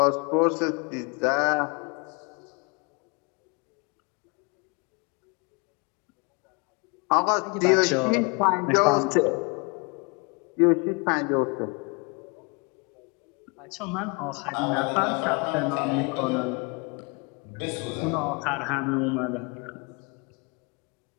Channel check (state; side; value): quieter; right; 31.7 dB